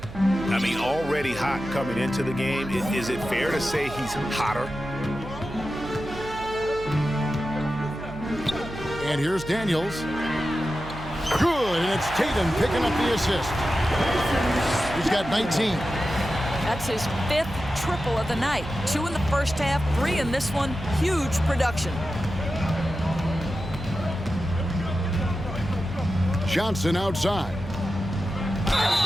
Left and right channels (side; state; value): right; noise; hum, 13 dB below the sound